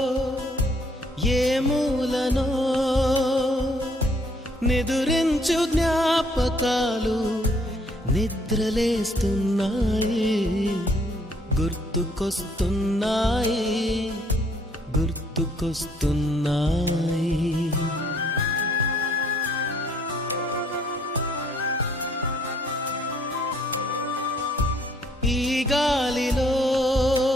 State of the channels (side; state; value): both; normal; correlation 0.64